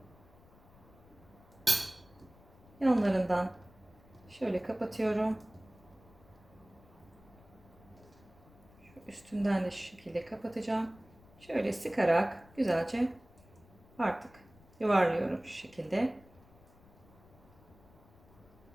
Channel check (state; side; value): noise; left; rumble, 25 dB below the sound